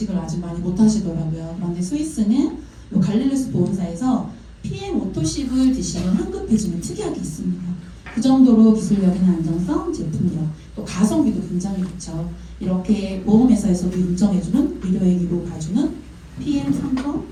아직 많이 못 하시더라고요. 그런데 스위스는 요 갈릴루스 보험사에서 PM 오토십을 드시면 환급해주는 특약이 있습니다. 그 정도로 기술력이나 안정성, 제품력, 또 가성비도 굉장히 좋죠. 이렇게 보험회사에서도 인정해주는 의료행위로 봐주는 PM 3번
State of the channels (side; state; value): both; identical; correlation 1.00